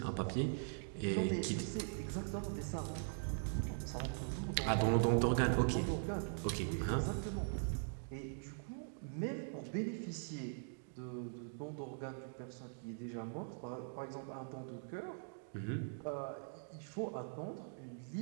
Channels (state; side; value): silent; left; digital silence